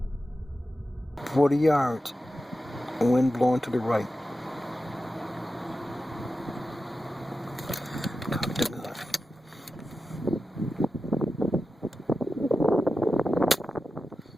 "40 yards. Wind blowing to the right." Cock the gun.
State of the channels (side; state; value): both; normal; correlation 0.92